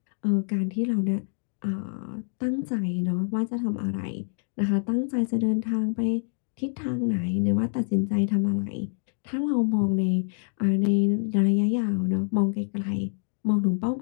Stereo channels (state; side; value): silent; right; 61 dB below the other